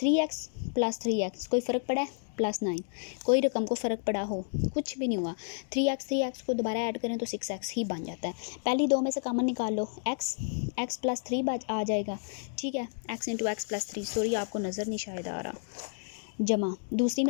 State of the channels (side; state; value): right; silent; digital silence